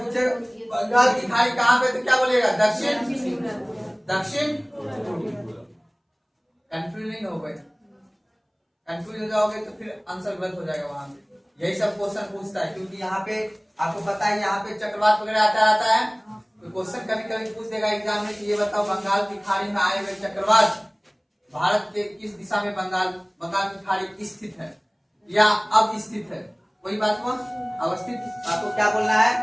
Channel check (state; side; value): identical; both; correlation 1.00